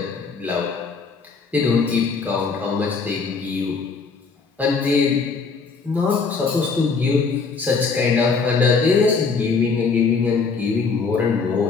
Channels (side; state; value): right; quieter; 4.8 dB